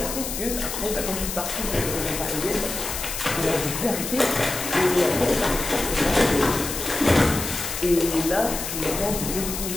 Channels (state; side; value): noise; left; hiss, 5 dB below the sound